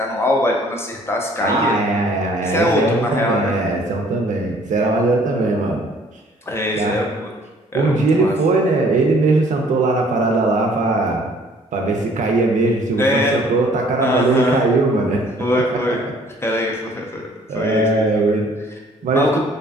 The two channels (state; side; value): normal; both; correlation 0.58